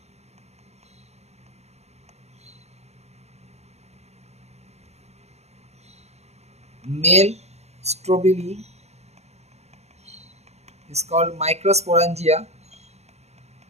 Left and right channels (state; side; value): late; left; 0.31 ms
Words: Male strobili is called microsporangia.